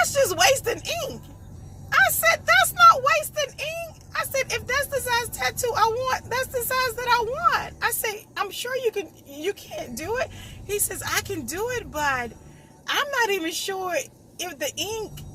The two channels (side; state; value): both; identical; correlation 1.00